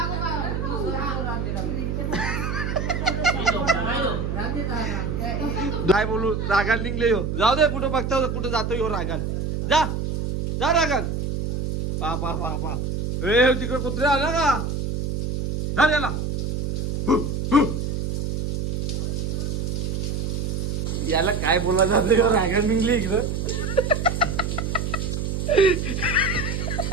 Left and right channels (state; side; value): noise; right; hum, 1 dB below the sound